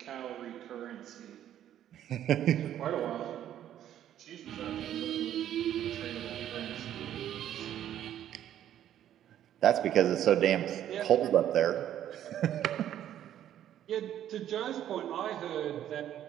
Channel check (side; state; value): left; quieter; 11.2 dB